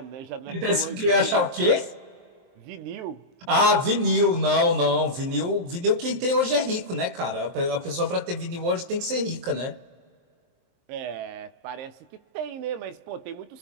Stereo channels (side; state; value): left; late; 23 ms